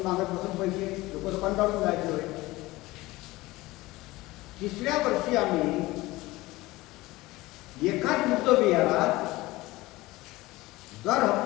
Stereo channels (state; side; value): quieter; right; 19.7 dB